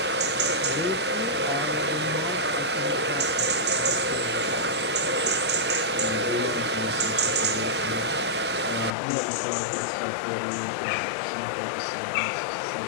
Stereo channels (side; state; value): right; drops out; at 9.0 s